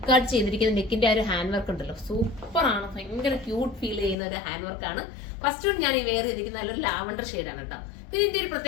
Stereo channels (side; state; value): right; drops out; at 4.2 s